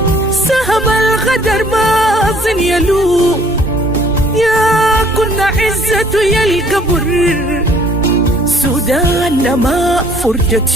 سهم الغدر باطن يلوم، يا كنا عزته يا القبر سودان ما فرجت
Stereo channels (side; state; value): both; normal; correlation 0.58